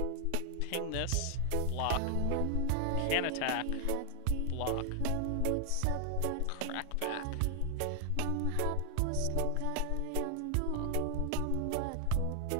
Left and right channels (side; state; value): both; different; correlation 0.00